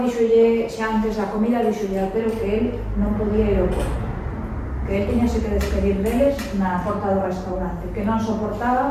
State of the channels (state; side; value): identical; both; correlation 1.00